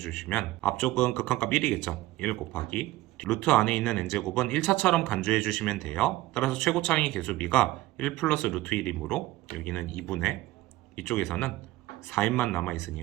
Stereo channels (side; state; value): left; quieter; 17.2 dB